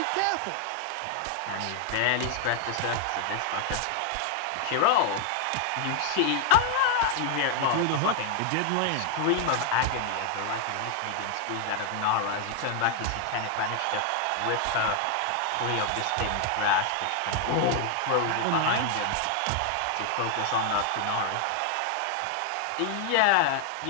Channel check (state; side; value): different; both; correlation 0.00